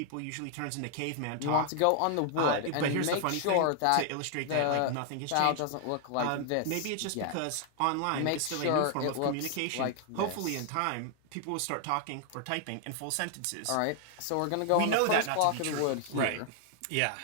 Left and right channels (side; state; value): both; different; correlation 0.00